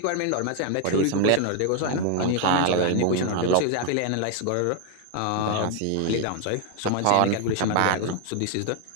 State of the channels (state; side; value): different; both; correlation 0.00